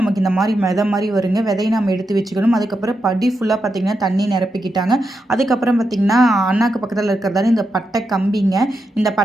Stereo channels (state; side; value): normal; both; correlation 0.86